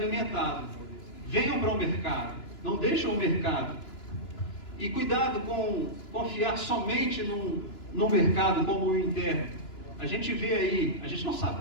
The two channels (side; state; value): right; late; 2.9 ms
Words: Venham para o mercado, não deixem o mercado. E cuidado com confiar somente num mercado como o interno. A gente vê aí, a gente não sabe